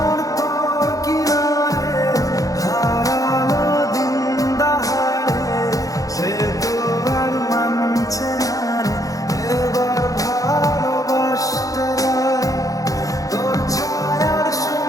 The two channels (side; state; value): right; late; 0.17 ms